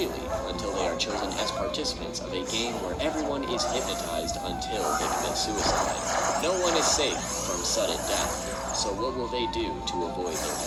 until they are chosen as participants of a game where everyone is hypnotized until they commit suicide. No one is safe from sudden death, so what will they do to avoid their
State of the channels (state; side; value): identical; both; correlation 1.00